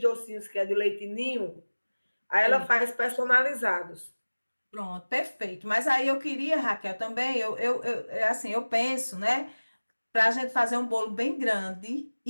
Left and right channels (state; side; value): inverted; both; correlation -1.00